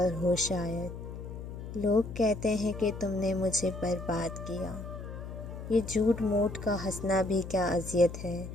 ہو شاید، لوگ کہتے ہیں کہ تم نے مجھے برباد کیا، یہ جھوٹ موٹ کا ہنسنا بھی کیا اذیت ہے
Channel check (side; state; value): left; noise; hum, 9 dB below the sound